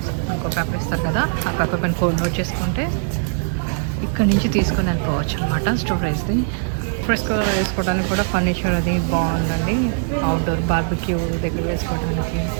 ఇంకో పేపర్ ఇస్తారు కదా, ఆ పేపర్ పైన కోడ్ నోట్ చేసుకుంటే ఇక్కడి నుంచి తీసుకొని వెళ్ళిపోవచ్చు అనమాట స్టోరేజ్ది. ఫ్రెష్గా వేసుకోవడానికి కూడా ఫర్నిచర్ అది బాగుందండి. అవుట్డోర్ బార్బిక్యూ దగ్గర వేసుకోవడానికి.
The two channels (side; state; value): left; silent; 62 dB below the other